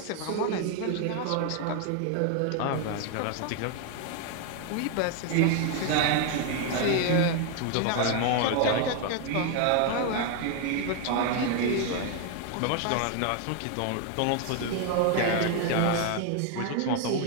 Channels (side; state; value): both; different; correlation 0.00